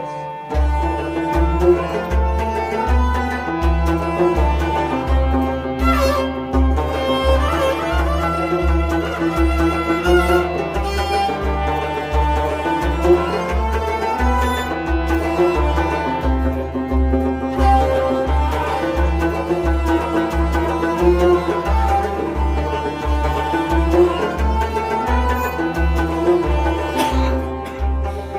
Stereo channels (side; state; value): both; identical; correlation 1.00